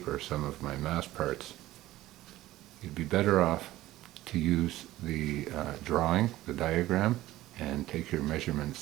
some of my mast parts. You'd be better off to use the drawing, the diagram, and take your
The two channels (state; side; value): quieter; left; 16.0 dB